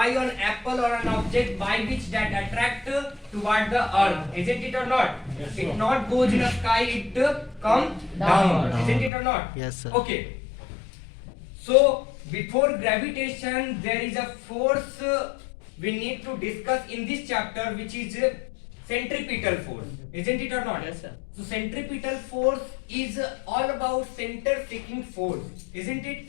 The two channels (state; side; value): drops out; right; at 9.1 s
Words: on apple or an object by which that attract toward the earth, isn't it or not? Yes, It sir. not goes in the sky, it come down, isn't it or not? Yes, sir. Okay, so before gravitation there is a force we need to discuss in this chapter, which is centripetal force, isn't it or not? Yes, sir. So centripetal force is all about center seeking force, isn't it?